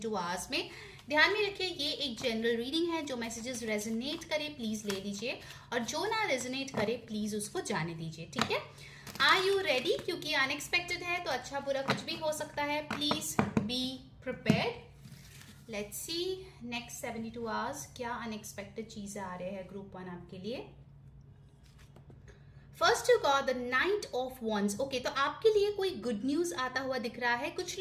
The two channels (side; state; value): both; identical; correlation 1.00